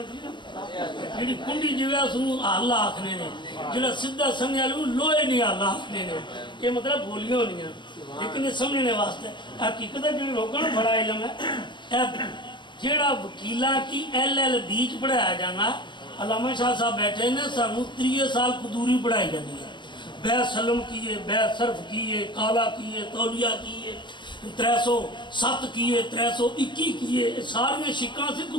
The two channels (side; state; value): right; late; 0.22 ms